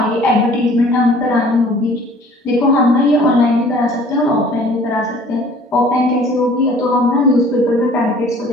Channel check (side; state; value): both; normal; correlation 0.51